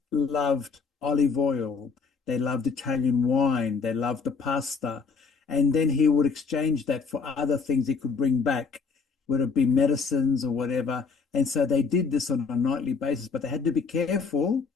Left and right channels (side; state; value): right; quieter; 5.2 dB